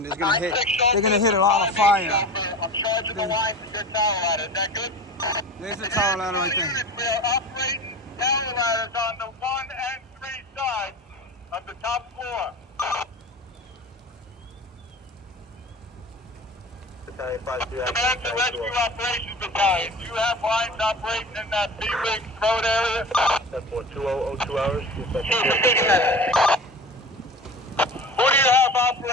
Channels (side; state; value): both; normal; correlation 0.35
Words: they're gonna hit a lot of fire. I'm charging the line for your tower ladder, is that good? There's the tower ladder right there. Units, we are operating tower ladders on the 1 and 3 sides of the top floor. Battalion 5-3, Command to Rescue Operations Battalion, do you have lines operating in that B-Wing road area? 10-4, 2 hours. Who do you have